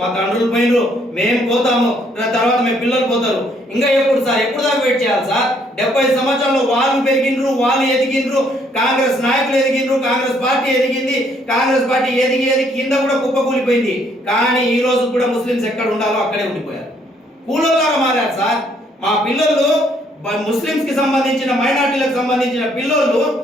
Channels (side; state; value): both; normal; correlation 0.67